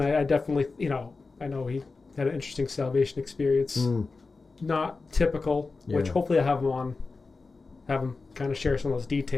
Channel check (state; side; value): quieter; right; 4.0 dB